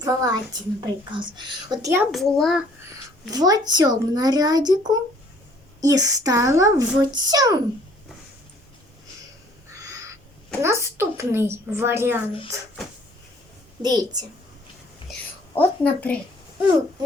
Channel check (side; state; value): both; normal; correlation 0.58